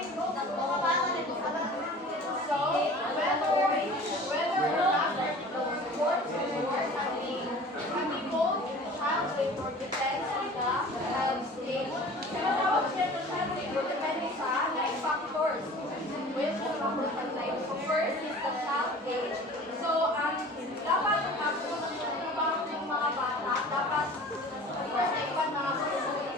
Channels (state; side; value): normal; both; correlation 0.43